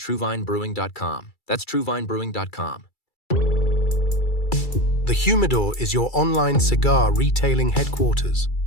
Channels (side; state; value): right; late; 2.3 ms